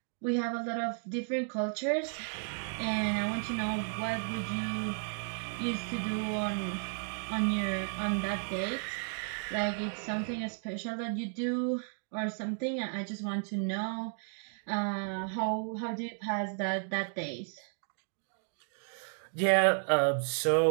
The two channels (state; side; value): silent; left; 55 dB below the other